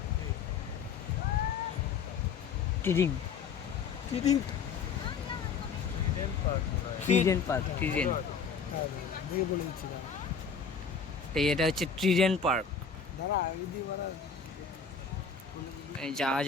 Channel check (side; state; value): right; quieter; 5.9 dB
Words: ট্রিডিং ট্রিডেন্ট পার্ক ট্রিডেন্ট এটা হচ্ছে ট্রিডেন্ট পার্ক এই জাহাজ